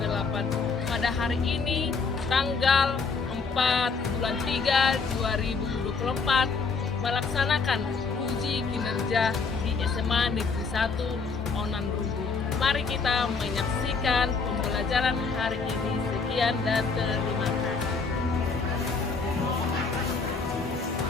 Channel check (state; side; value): quieter; right; 4.8 dB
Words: Pada hari ini tanggal 4 bulan 3 2024 melaksanakan uji kinerja di SMA Negeri 1 Onan Rumbu. Mari kita menyaksikan pembelajaran hari ini. Sekian dan terima kasih.